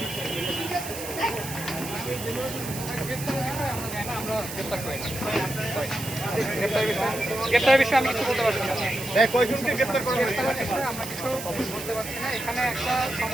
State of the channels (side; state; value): right; noise; hiss, 9 dB below the sound